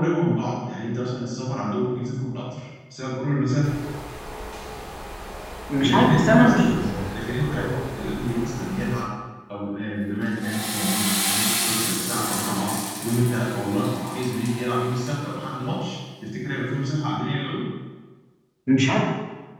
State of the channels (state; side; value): identical; both; correlation 1.00